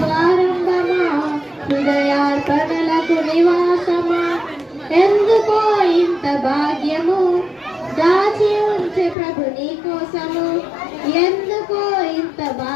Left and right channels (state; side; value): drops out; right; at 9.2 s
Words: ఆరంభమా హృదయార్పణలకు నివాసమా, ఎందుకో ఇంత భాగ్యము దాచి ఉంచే ప్రభు నీ కోసము, ఎందుకో ఇంత